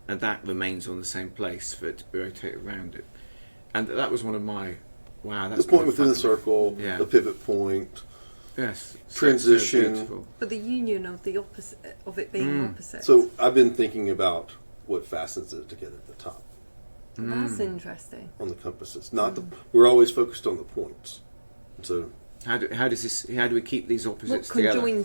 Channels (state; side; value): inverted; both; correlation -1.00